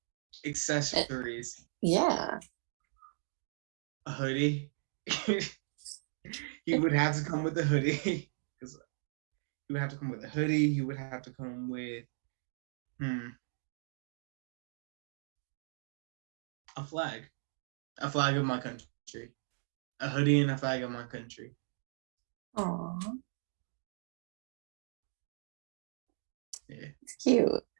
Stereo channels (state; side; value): silent; left; digital silence